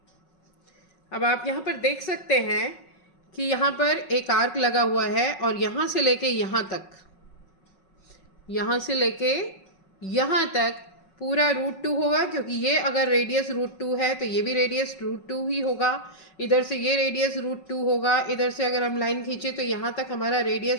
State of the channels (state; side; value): late; right; 5.4 ms